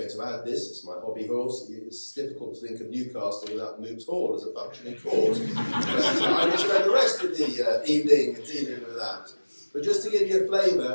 to add this, it's my hobby horse, it's difficult to think of Newcastle without Moot Hall as a functioning court. But I will spend the rest of the evening dealing with that. But just to give you a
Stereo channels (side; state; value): both; inverted; correlation -1.00